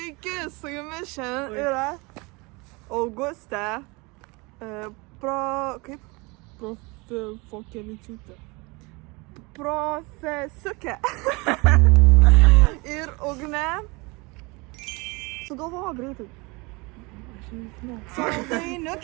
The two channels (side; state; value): left; quieter; 26.5 dB